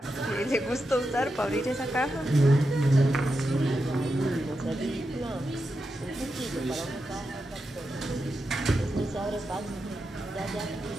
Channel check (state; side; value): normal; both; correlation 0.88